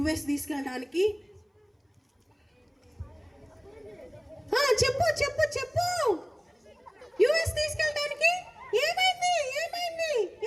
తీసుకెళ్ళడానికి. చెప్పు చెప్పు చెప్పు. US తీసుకెళ్ళడానికి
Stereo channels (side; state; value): both; identical; correlation 1.00